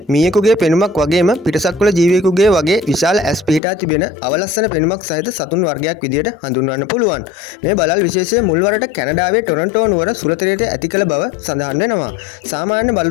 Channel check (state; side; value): drops out; right; at 3.6 s